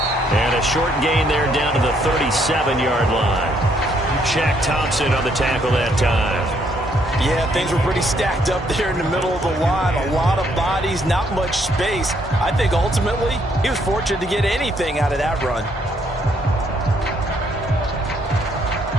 And a short gain there down to the 37-yard line. Shaq Thompson on the tackle that time. Yeah, things were pretty stacked up there in the middle of the line. A lot of bodies bodies, not much space. I think ultimately he was fortunate to get anything out of that run.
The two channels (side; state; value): both; normal; correlation 0.70